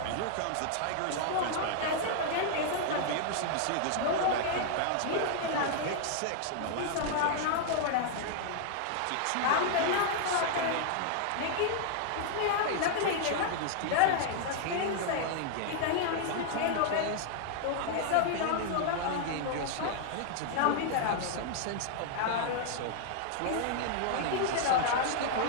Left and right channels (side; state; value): both; different; correlation 0.00